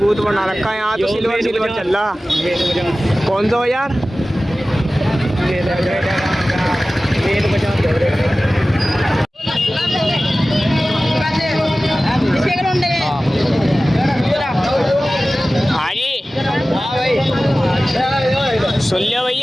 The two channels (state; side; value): normal; both; correlation 0.96